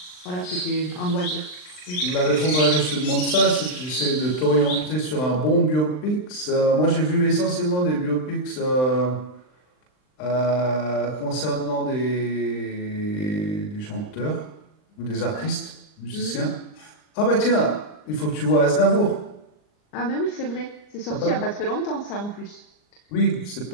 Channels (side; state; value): right; late; 39 ms